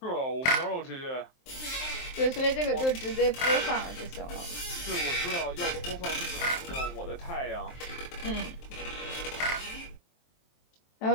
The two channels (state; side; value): late; right; 23 ms